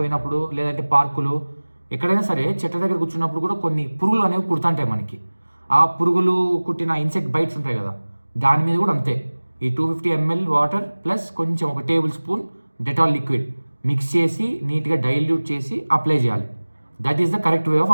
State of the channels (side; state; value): both; inverted; correlation -1.00